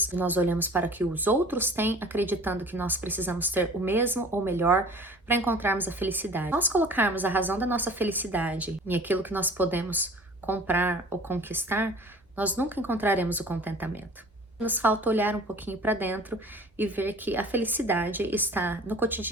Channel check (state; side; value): normal; both; correlation 0.45